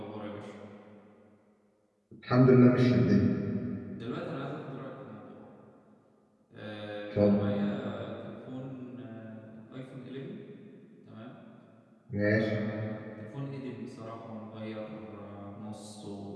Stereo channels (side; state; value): both; identical; correlation 1.00